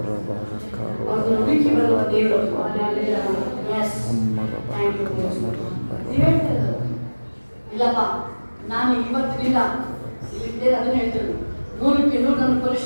ಅವ್ರನ್ನ ಹುಡುಕಿ ಬರುವ ದೇವರು. ಇಲ್ಲಪ್ಪ ನಾನು ಇವತ್ತಿನಿಂದ ಇಲ್ಲಿದ್ದೇನೆ ಅದನ್ನ ಹೇಳ್ತೇನೆ 100ಕ್ಕೆ 100 ನಾನು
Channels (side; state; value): both; inverted; correlation -1.00